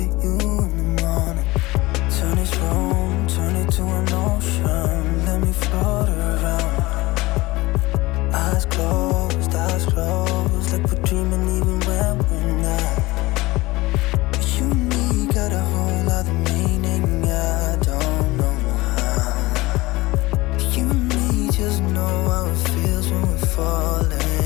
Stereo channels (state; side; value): quieter; right; 20.7 dB